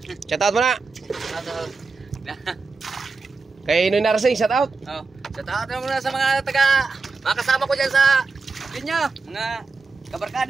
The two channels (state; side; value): quieter; left; 4.3 dB